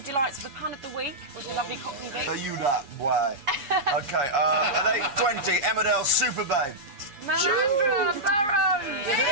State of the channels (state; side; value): late; left; 7.1 ms